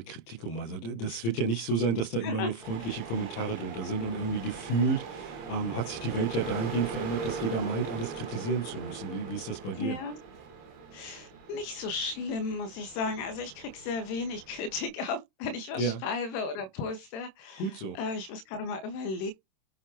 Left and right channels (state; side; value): late; right; 26 ms